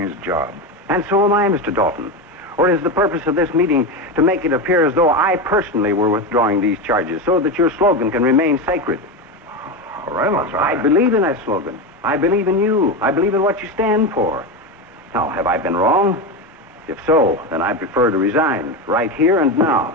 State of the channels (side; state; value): both; normal; correlation 0.16